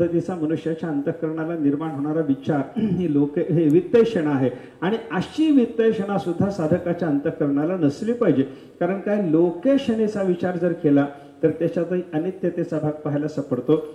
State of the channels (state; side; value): identical; both; correlation 1.00